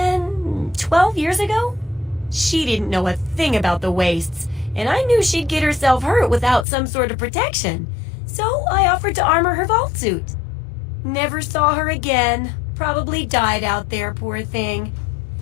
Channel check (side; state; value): right; drops out; at 6.7 s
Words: 12 years ago. She didn't know a thing about the wastes, and I knew she'd get herself hurt without some sort of protection. So I offered to armor her vault suit. Never saw her again. Probably died out there, poor thing.